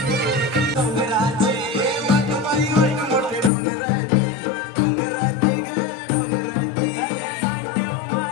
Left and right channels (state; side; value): drops out; right; at 3.5 s